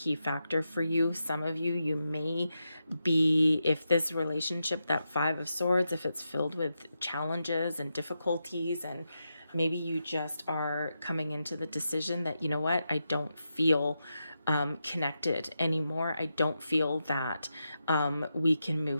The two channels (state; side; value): inverted; both; correlation -0.86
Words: factor for you. Some of you, you may be, if this relationship, that Five of Swords, if it's filled with challenges and difficulties, and maybe you just are coming into the decision that, you know what, I don't feel connected anymore. I don't feel that we can